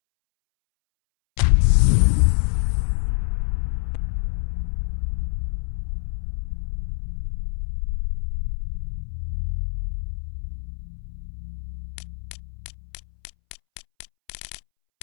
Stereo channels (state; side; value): silent; right; 62 dB below the other